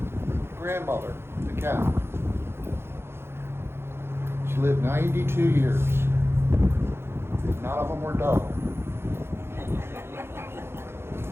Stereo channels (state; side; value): late; left; 0.12 ms